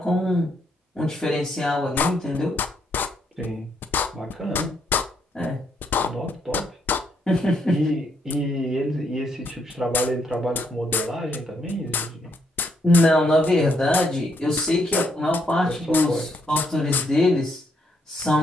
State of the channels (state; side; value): normal; both; correlation 0.75